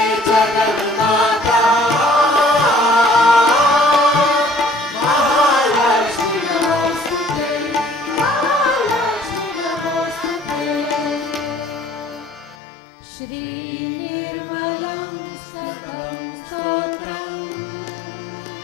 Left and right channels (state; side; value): drops out; right; at 12.6 s